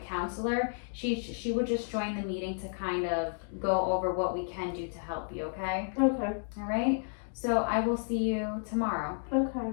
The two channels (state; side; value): silent; right; digital silence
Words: counselor, she would just join the meeting to kind of go over what we can do to help you. Okay. Okay. All right. So I will see you tomorrow. Okay.